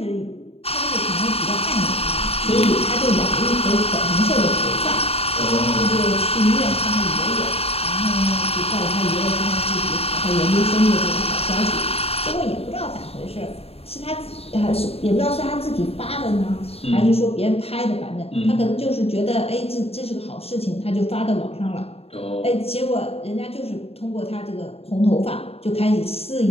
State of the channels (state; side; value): late; right; 0.29 ms